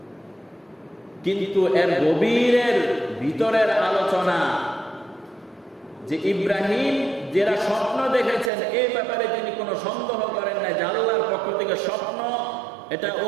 কিন্তু এর গভীরের ভিতরের আলোচনা যে ইব্রাহিম যারা স্বপ্ন দেখেছেন এই ব্যাপারে তিনি কোনো সন্দেহ করেন না যে আল্লাহর পক্ষ থেকে স্বপ্ন, এটা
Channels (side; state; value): left; drops out; at 8.5 s